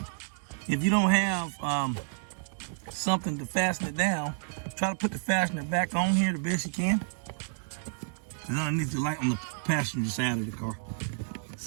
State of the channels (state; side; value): silent; left; digital silence